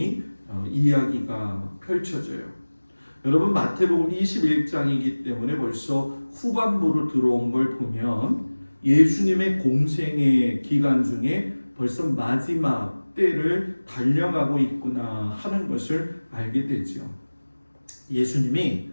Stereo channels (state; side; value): inverted; both; correlation -1.00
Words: 이야기가 펼쳐져요. 여러분 마태복음 21장이기 때문에 벌써 후반부로 들어온 걸 보면 예수님의 공생의 기간 중에 벌써 마지막 때를 달려가고 있구나 하는 것을 알게 되죠. 예수님이